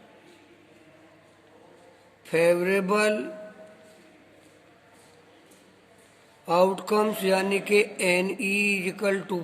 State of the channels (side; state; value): both; identical; correlation 1.00